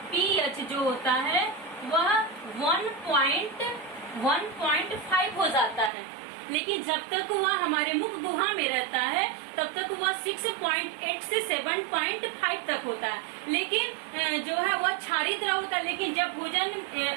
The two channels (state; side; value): drops out; left; at 5.9 s